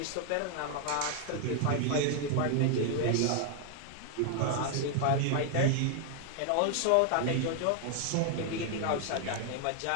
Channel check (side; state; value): both; different; correlation 0.00